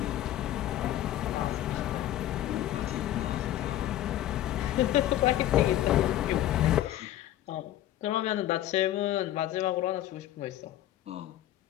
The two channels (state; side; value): quieter; right; 13.0 dB